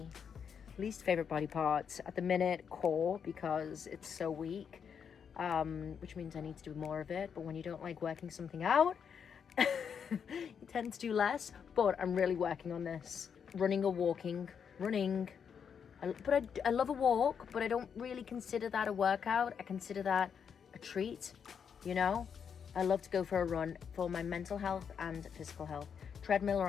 Least favorite body part at the minute, core, because it's so weak, which means I need to do more of it. But when you don't like working something out, you tend to do less. But I'm really working on this. Running or walking? Running. I love a walk, but I don't really consider that a workout. I consider that a treat, you know? I love to go for a run for my mental health and physical health. Treadmill or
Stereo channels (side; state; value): right; quieter; 7.1 dB